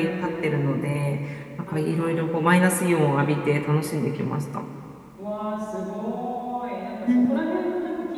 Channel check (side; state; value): both; identical; correlation 1.00